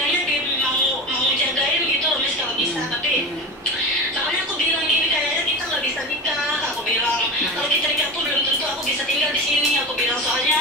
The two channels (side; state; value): both; normal; correlation 0.26